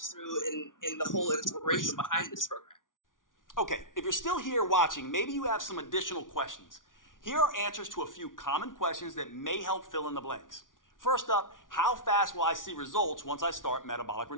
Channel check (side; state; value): right; late; 0.88 ms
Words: through in the whole inspiration behind this program. Okay, if you're still here watching, maybe you have some additional questions. Here are answers to a few common questions that may help fill in the blanks. First up, how fast will I see results once I start metabolic